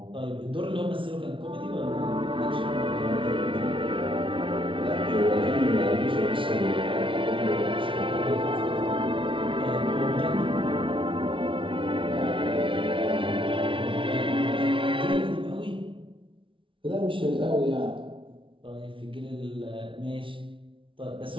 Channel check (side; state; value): left; late; 0.25 ms